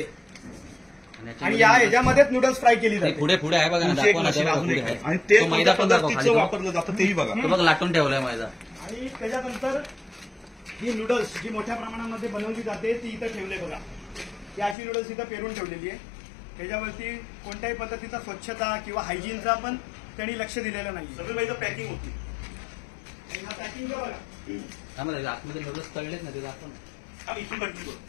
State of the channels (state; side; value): drops out; right; at 14.8 s